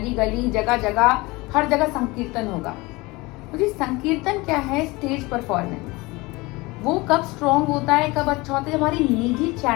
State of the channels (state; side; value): quieter; right; 22.9 dB